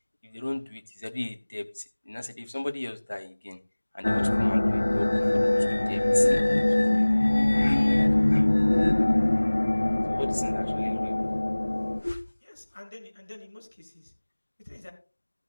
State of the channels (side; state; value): both; inverted; correlation -1.00